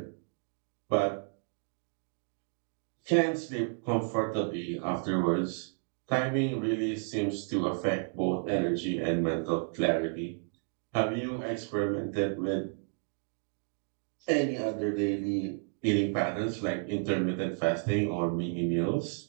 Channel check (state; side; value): silent; left; 56 dB below the other